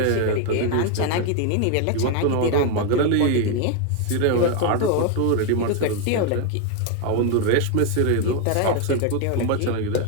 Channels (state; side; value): different; both; correlation 0.01